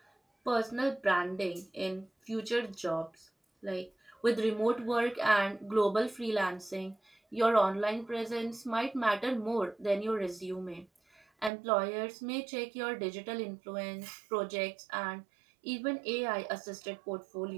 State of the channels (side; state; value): left; drops out; at 11.5 s